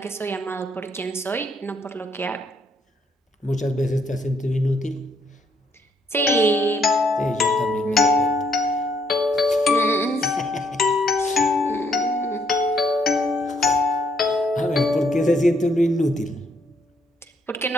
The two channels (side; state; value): both; normal; correlation 0.70